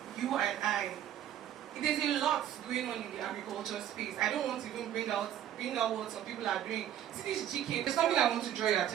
you and I. There's a lot going on in the agriculture space. I don't want to even bring out what some people are doing. See this GK, there's something I want to draw your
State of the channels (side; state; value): left; quieter; 11.1 dB